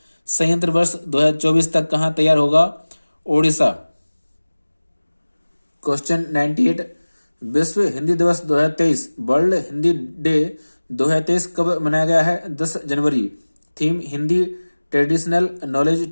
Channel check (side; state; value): both; inverted; correlation -1.00